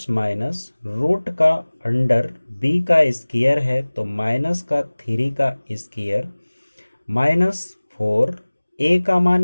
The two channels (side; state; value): both; inverted; correlation -1.00